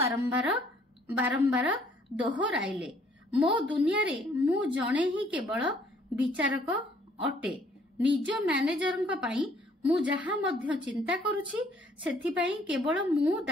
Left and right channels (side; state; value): both; normal; correlation 0.62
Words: ବାରମ୍ବାର ଦୋହରାଇଲେ। ମୋ ଦୁନିଆରେ ମୁଁ ଜଣେ ହିଁ କେବଳ ବିଚାରକ ଅଟେ। ନିଜ ମ୍ୟାନେଜରଙ୍କ ପାଇଁ ମୁଁ ଯାହା ମଧ୍ୟ ଚିନ୍ତା କରୁଛି ସେଥିପାଇଁ କେବଳ ମୁଁ